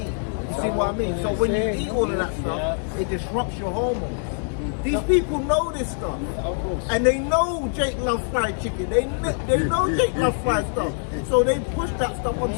You see what I mean? So when you eat all of that stuff, it disrupts your hormones. These people know this stuff, and they know Jake loves fried chicken. They know Jake loves fried stuff, so they push that stuff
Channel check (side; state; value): right; silent; 63 dB below the other